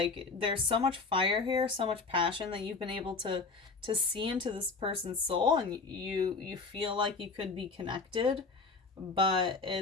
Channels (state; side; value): quieter; right; 4.3 dB